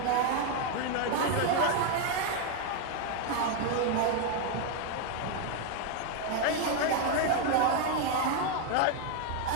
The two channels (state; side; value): different; both; correlation 0.01